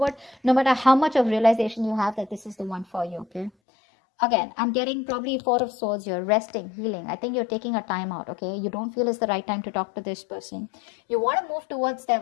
no matter how much of realization you have that this is the one for you, okay? Again, I'm getting probably 4 of Swords here, resting, healing. I think you're taking a time out, okay? You don't feel it's the right time to talk to this person. You want to move towards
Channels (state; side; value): drops out; right; at 3.5 s